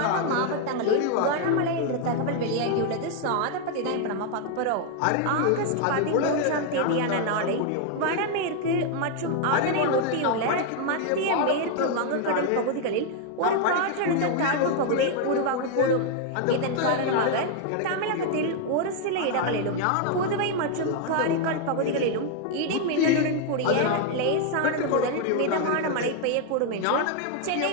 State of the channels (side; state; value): both; different; correlation 0.00